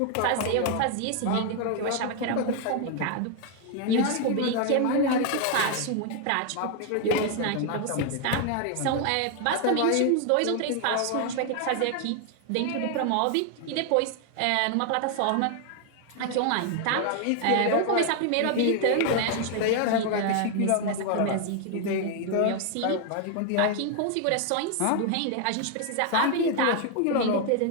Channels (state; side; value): different; both; correlation 0.00